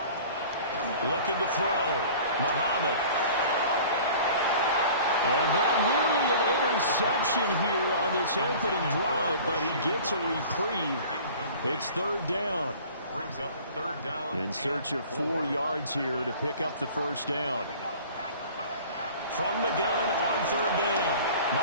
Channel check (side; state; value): both; inverted; correlation -0.45